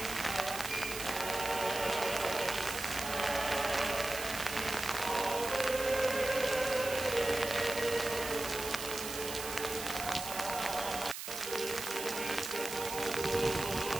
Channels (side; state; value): right; noise; hiss, 7 dB below the sound